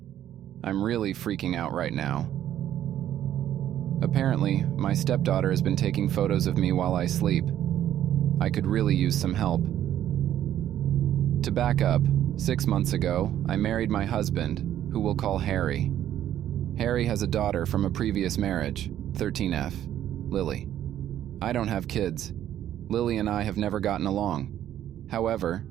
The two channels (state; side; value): quieter; left; 11.5 dB